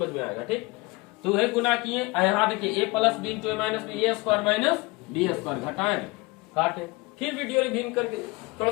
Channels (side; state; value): right; quieter; 24.1 dB